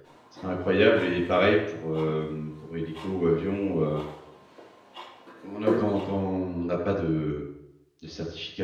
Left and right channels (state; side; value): identical; both; correlation 1.00